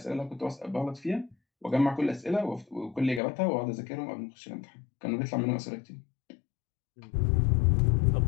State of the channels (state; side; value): drops out; right; at 3.2 s